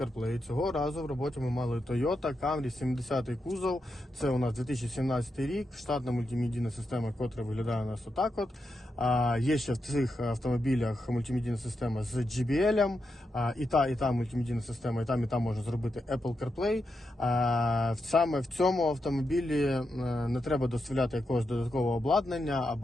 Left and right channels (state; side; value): normal; both; correlation 0.86